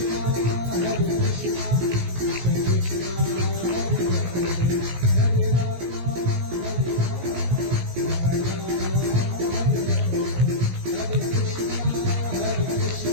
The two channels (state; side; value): late; left; 17 ms